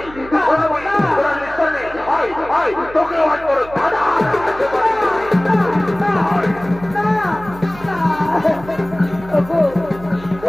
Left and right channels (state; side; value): noise; right; hum, 17 dB below the sound